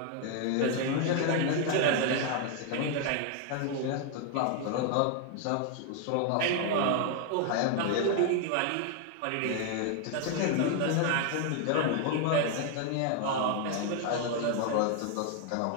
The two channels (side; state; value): both; different; correlation 0.00